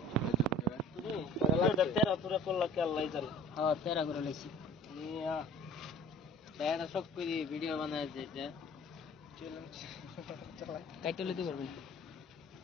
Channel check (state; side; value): normal; both; correlation 0.48